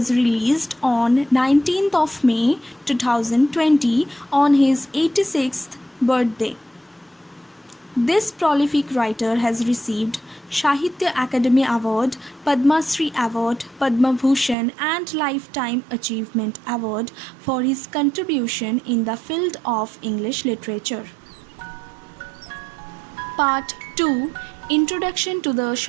released on 19th of May 2020 on his 86th birthday. This prolific writer has received Sahitya Akademi Award, Padma Shri Award, Padma Bhushan and Lifetime Achievement Award for his contribution in the field of English literature. Part 2, Introduction to the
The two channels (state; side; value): drops out; left; at 14.6 s